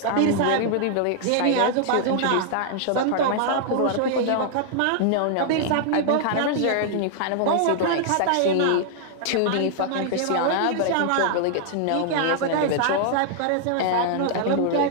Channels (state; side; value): different; both; correlation -0.01